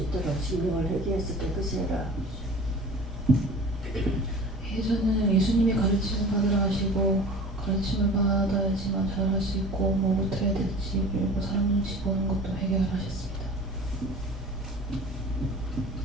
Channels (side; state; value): both; normal; correlation 0.40